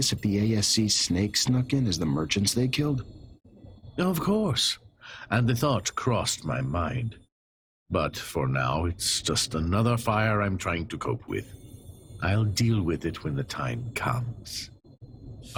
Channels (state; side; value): identical; both; correlation 1.00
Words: if the ASC snake snuck in as the merchants they killed? Of course, and the thought crossed my mind. But for now, it's just another fire I'm trying to cope with. I'll deal with it when the time comes.